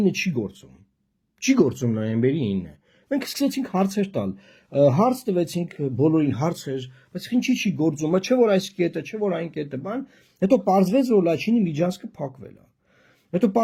9-ը չի գործում։ Չի գործում նոյեմբերի 9-ը։ Մենք սկսեցինք հարցեր տալ, հարց տվեցինք բոլորին հարցեր, բայց ինչի չի գործում, չէ որ այս կետը, չէ որ այն կետը, բան, հետո պարզվեց, որ Լաչինի միջանցքը փակվել է։ Հետո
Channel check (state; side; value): identical; both; correlation 1.00